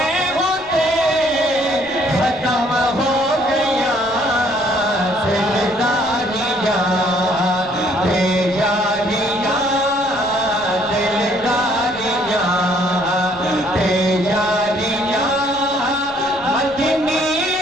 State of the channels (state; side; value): noise; left; rumble, 26 dB below the sound